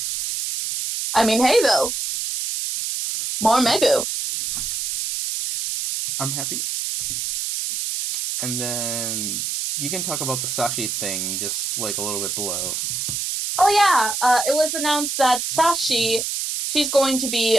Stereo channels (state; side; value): noise; right; hiss, 2 dB below the sound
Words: I mean, hey though, more Megu. I'm happy. And then you can talk about the Sashi thing just a little bit below. Oh yeah, it was announced that Sashi, she's going to